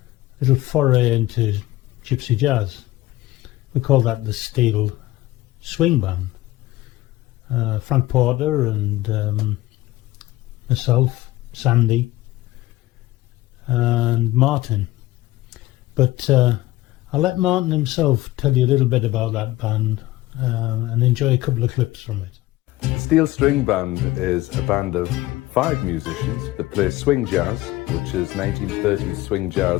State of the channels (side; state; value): right; quieter; 17.4 dB